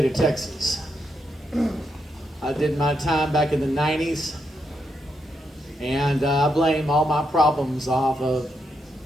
of Texas. I did my time back in the 90s. And I blame all my problems off of,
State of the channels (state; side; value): normal; both; correlation 0.81